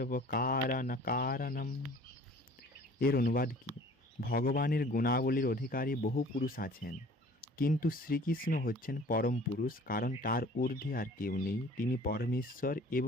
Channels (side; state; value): both; normal; correlation 0.49